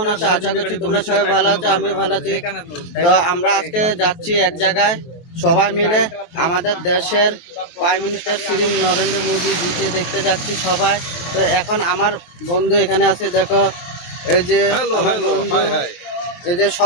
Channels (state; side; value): late; right; 23 ms